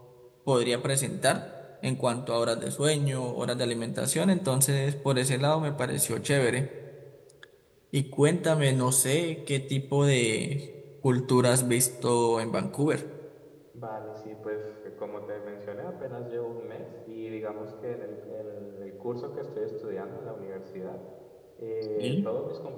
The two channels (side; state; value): both; identical; correlation 1.00